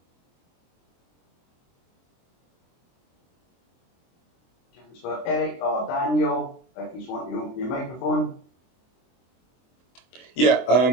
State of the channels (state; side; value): late; right; 23 ms